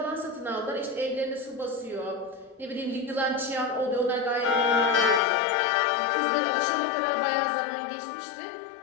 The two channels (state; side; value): drops out; right; at 5.2 s